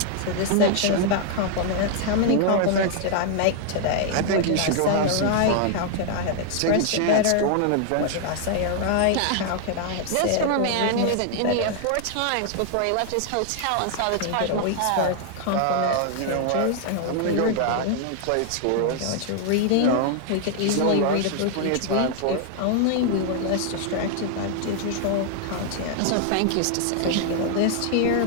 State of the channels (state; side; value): different; both; correlation 0.00